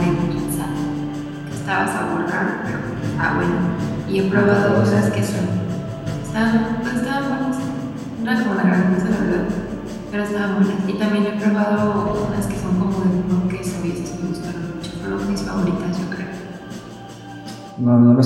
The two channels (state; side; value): identical; both; correlation 1.00